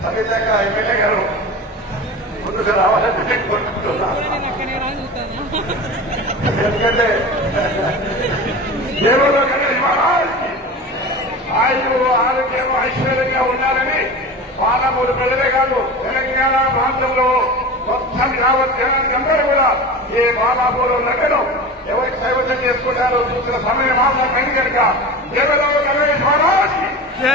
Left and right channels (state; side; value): normal; both; correlation 0.31